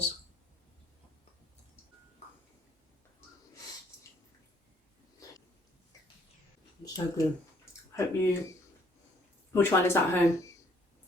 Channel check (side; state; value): both; normal; correlation 0.64